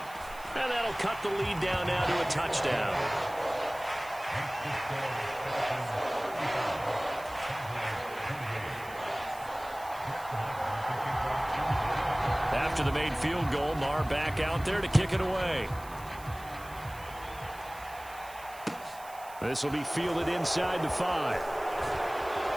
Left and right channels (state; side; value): noise; right; hiss, 19 dB below the sound